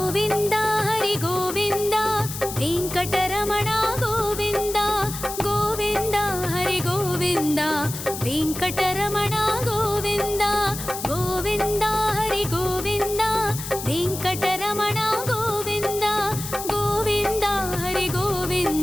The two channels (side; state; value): left; noise; hiss, 8 dB below the sound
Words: हरि गोविन्द वेङ्कटरमण गोविन्द गोविन्द हरि गोविन्द वेङ्कटरमण गोविन्द गोविन्द हरि गोविन्द वेङ्कटरमण गोविन्द गोविन्द हरि